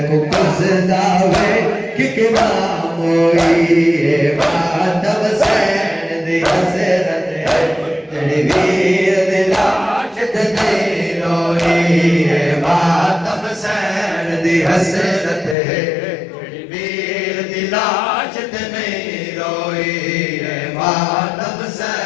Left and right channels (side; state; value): right; drops out; at 15.6 s